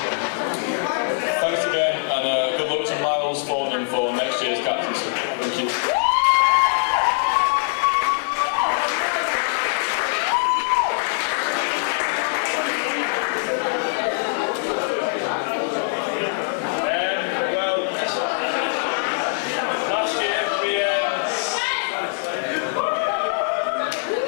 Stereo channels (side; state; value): right; silent; 64 dB below the other